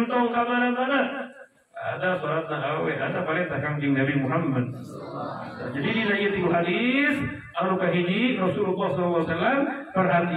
ka mana-mana ada salatna awe, ada perintah kanjeng Nabi Muhammad. Jadi dina ieu hadis anu kahiji Rasulullah sallallahu alaihi wasallam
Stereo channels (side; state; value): both; identical; correlation 1.00